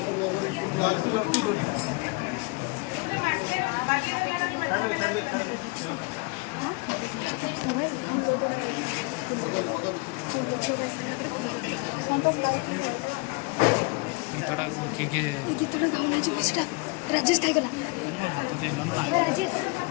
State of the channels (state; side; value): quieter; right; 28.4 dB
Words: गीतटा किए गीतटा गाउन सेटा राजेश खाइगला मोर हाथ देला ना राजेश